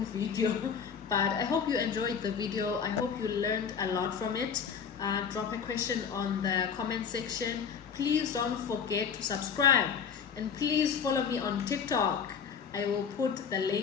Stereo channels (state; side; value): quieter; right; 6.8 dB